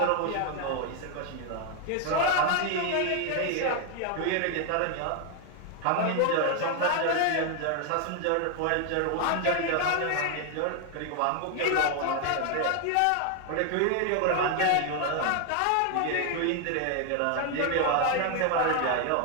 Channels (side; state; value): both; different; correlation 0.00